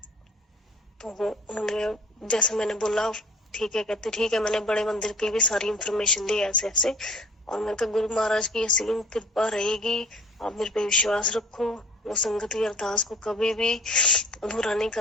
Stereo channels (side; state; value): both; normal; correlation 0.51